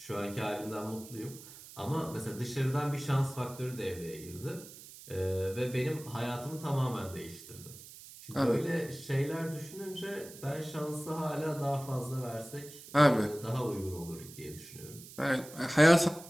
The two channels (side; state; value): right; noise; hiss, 16 dB below the sound